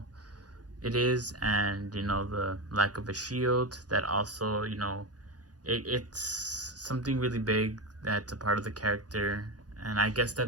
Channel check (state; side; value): late; left; 0.68 ms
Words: it is, and you know, the lack of a shield. That also, you know, it's something really big that's a part of the character, and I guess